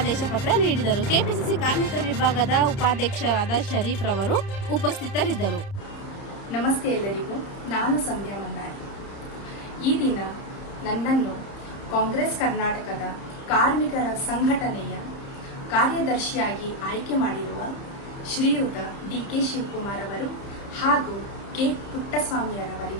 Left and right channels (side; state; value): right; late; 30 ms